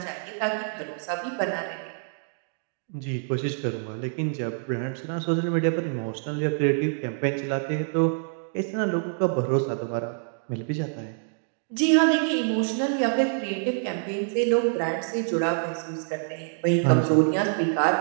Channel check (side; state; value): left; silent; digital silence